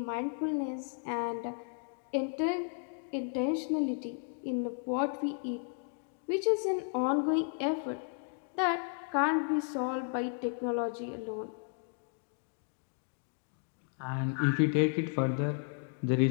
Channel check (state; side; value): silent; right; 55 dB below the other